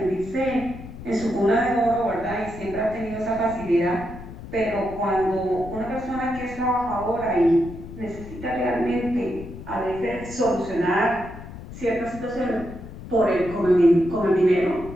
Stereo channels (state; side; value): noise; left; rumble, 13 dB below the sound